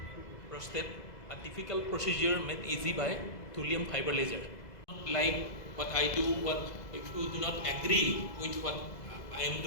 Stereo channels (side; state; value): right; late; 2.0 ms